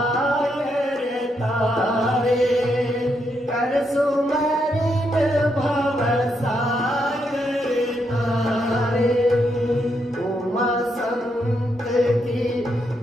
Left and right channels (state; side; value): normal; both; correlation 0.79